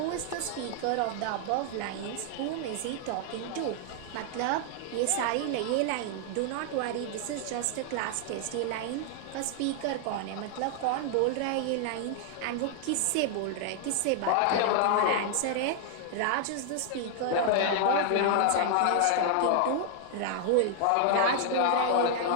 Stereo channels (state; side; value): different; both; correlation 0.00